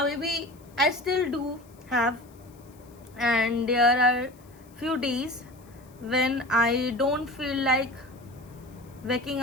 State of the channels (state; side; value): noise; left; hiss, 29 dB below the sound